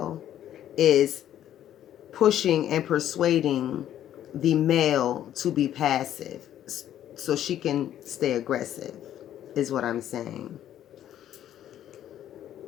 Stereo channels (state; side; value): quieter; right; 11.4 dB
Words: is pushing and persuading the male to be passive so she can stay aggressive, is what I'm saying.